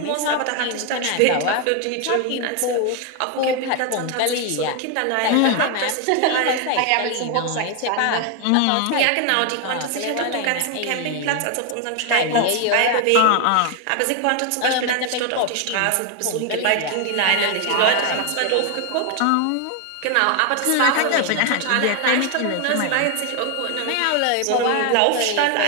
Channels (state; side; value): different; both; correlation 0.01